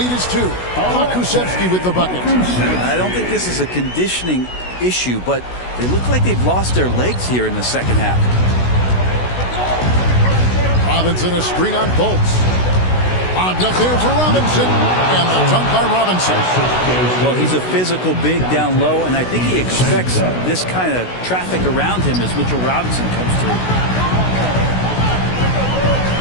is 2. Pokusevski with the bucket. I don't think this is a conditioning issue, but they look like they've lost their legs here in the second half. Robinson a screen on Fultz. Popped up there for Robinson, and the dunk by Robinson. Well, he's a physical big down low, and I think he expects this kind of traffic around him as Mitchell Robinson comes through.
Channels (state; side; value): late; right; 16 ms